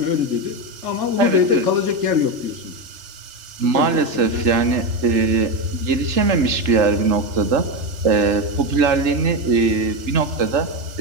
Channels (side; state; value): left; late; 3.3 ms